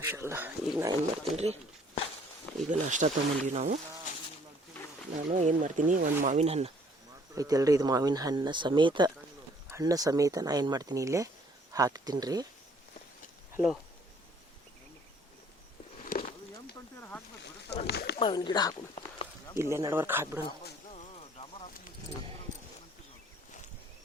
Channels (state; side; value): normal; both; correlation 0.59